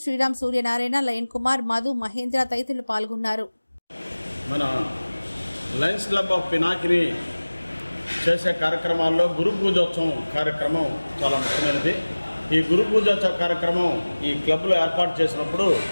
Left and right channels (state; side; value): inverted; both; correlation -1.00